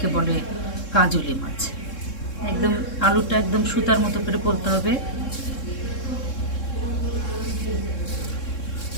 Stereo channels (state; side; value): late; right; 3.7 ms